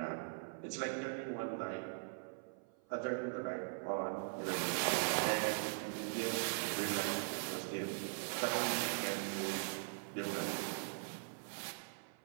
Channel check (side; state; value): left; silent; 50 dB below the other